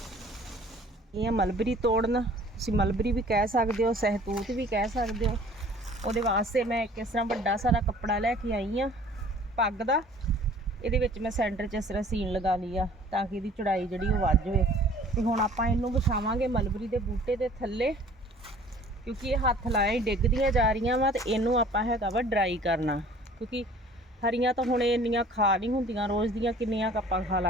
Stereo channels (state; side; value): normal; both; correlation 0.51